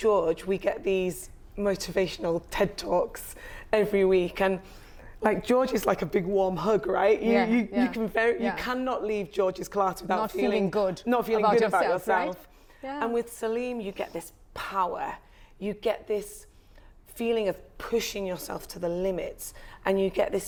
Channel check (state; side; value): identical; both; correlation 1.00